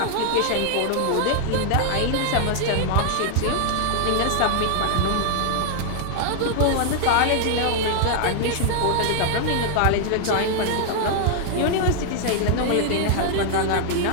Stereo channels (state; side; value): different; both; correlation -0.01